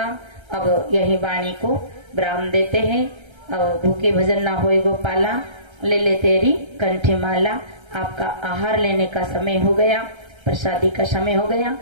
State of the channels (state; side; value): late; left; 1.3 ms